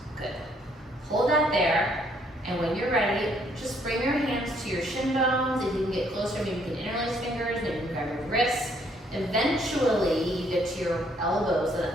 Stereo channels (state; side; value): normal; both; correlation 0.67